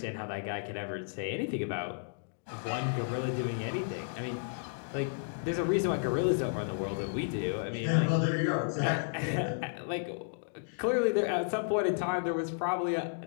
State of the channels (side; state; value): right; silent; digital silence